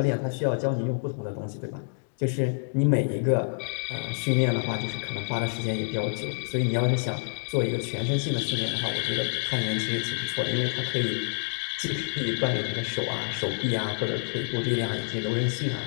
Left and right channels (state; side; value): silent; right; digital silence